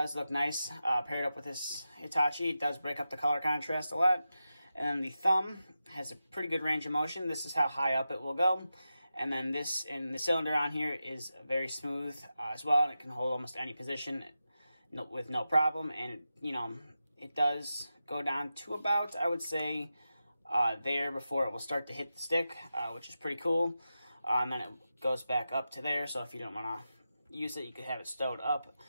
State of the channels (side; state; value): both; inverted; correlation -0.91